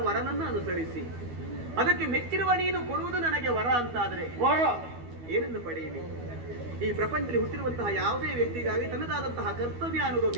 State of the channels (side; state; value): left; late; 12 ms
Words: ವರನನ್ನು ಅನುಸರಿಸಿ, ಅದಕ್ಕೆ ಮೆಚ್ಚಿರುವ ನೀನು ಕೊಡುವುದು ನನಗೆ ವರ ಅಂತಾದ್ರೆ ವರ ಏನನ್ನು ಪಡೆಯಲಿ? ಈ ಪ್ರಪಂಚದಲ್ಲಿ ಹುಟ್ಟಿರುವಂತಹ ಯಾವುದೇ ವ್ಯಕ್ತಿಗಾಗಿ ತನ್ನದಾದಂತಹ ಕರ್ತವ್ಯ